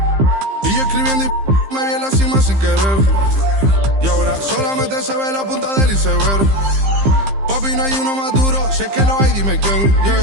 Y yo escribiendo y me vi en la cima sin querer. Y ahora solamente se ve la punta del iceberg. Papi, no hay uno más duro, si es que lo hay, dime quién. Yeah,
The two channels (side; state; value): left; late; 15 ms